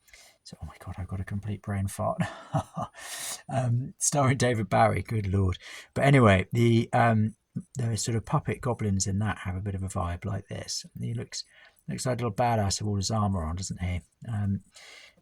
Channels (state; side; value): identical; both; correlation 1.00